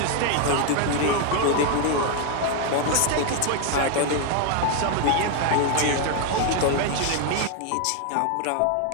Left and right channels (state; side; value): different; both; correlation 0.00